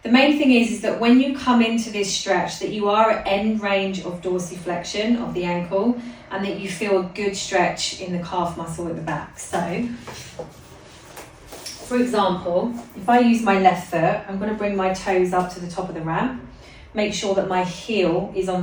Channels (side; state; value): both; identical; correlation 1.00